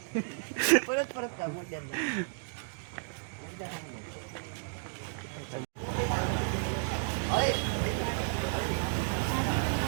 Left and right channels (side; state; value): left; silent; digital silence